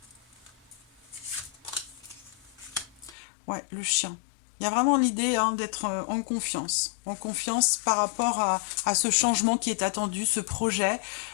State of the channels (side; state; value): right; drops out; at 3.2 s